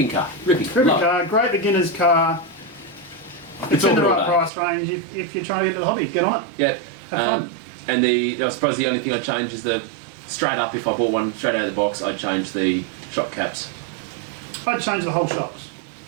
car. Ripping Ripping car, great beginner's car. It's in the right price range. If you're trying to get into the hobby, get on it. Yeah. Have fun. And I suppose the only thing I'd change is straight up, if I bought one straight out of the box, I'd change the shock caps. I'd change the whole shocks.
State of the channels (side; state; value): left; drops out; at 4.5 s